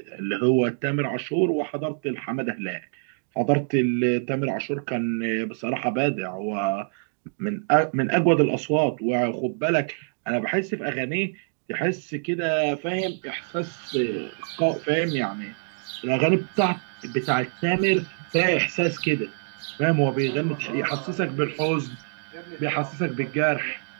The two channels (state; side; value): silent; left; digital silence